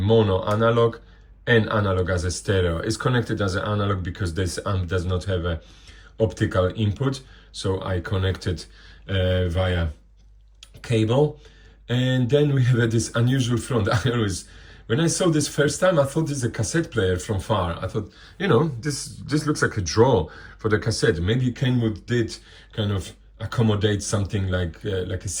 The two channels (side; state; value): both; identical; correlation 1.00